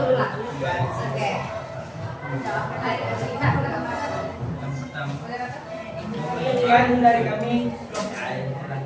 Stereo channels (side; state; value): both; identical; correlation 1.00